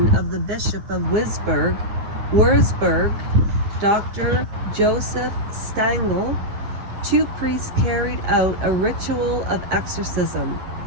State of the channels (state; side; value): late; left; 10 ms